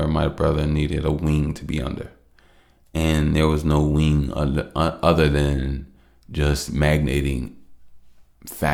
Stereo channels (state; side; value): identical; both; correlation 1.00